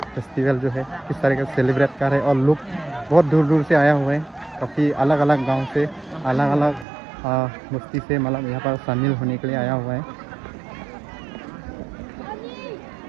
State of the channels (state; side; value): drops out; left; at 6.9 s